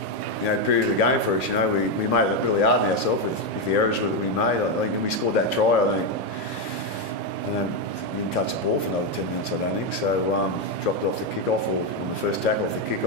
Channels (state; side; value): normal; both; correlation 0.06